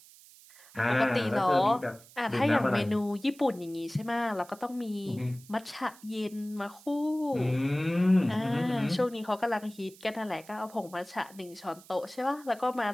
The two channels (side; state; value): right; noise; hiss, 23 dB below the sound